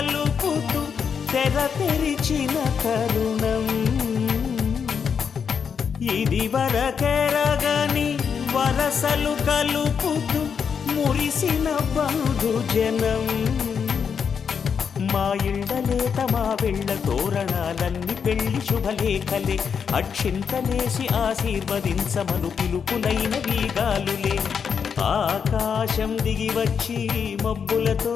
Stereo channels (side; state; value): right; quieter; 6.7 dB